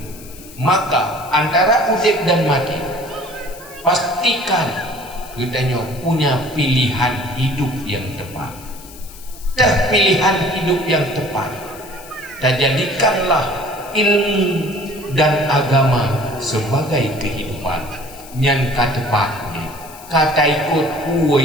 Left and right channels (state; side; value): noise; left; hiss, 19 dB below the sound